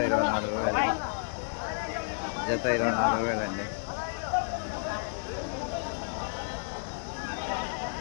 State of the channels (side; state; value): right; silent; 57 dB below the other